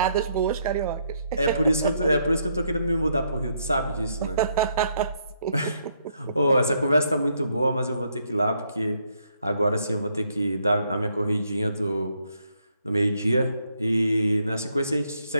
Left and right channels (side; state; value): both; inverted; correlation -0.74